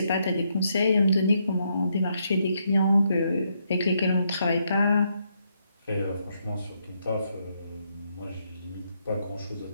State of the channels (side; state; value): both; inverted; correlation -0.77